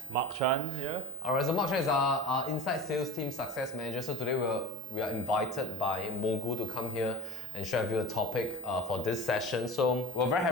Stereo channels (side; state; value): both; normal; correlation 0.39